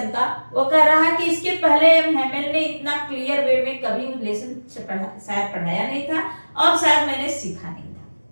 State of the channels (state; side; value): inverted; both; correlation -1.00